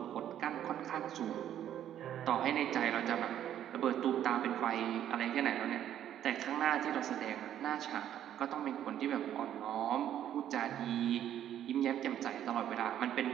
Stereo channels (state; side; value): quieter; left; 10.8 dB